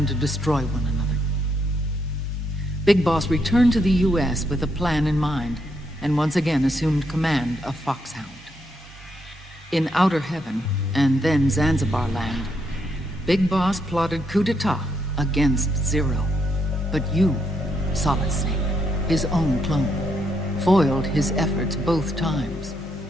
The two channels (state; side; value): normal; both; correlation 0.77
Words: to destroy one another. Big Boss returned to the US with a plan in mind, and once again assumed command of Foxhound. In Outer Heaven, and then Zanzibar Land, Big Boss plotted coup d'etat against Zero. But you, Solid Snake, his own clone, foiled his efforts both times.